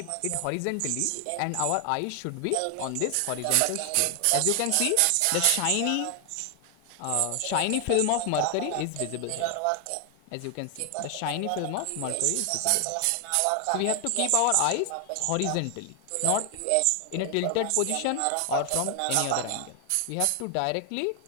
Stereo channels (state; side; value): different; both; correlation 0.00